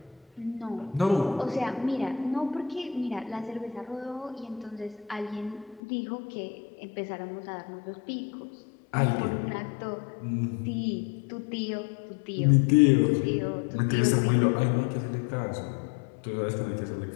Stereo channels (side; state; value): right; drops out; at 5.8 s